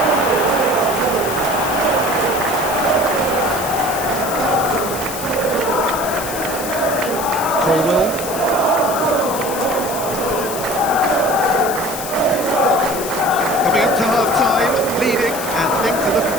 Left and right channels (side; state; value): left; noise; hiss, 9 dB below the sound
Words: Colwell. Coming up to half-time, leading, and things are looking